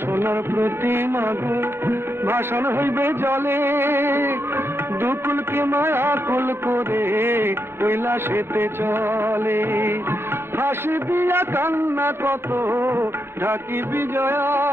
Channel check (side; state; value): left; late; 0.11 ms